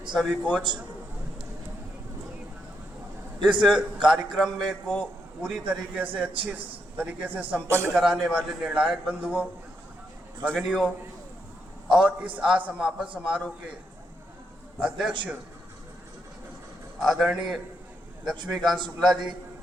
सभी कोच, इस कार्यक्रम में को पूरी तरीके से अच्छी तरीके से संपन्न कराने वाले निर्णायक बंधुओं, भगिनियों और इस समापन समारोह के अध्यक्ष आदरणीय लक्ष्मीकांत शुक्ला जी,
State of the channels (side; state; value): both; normal; correlation 0.80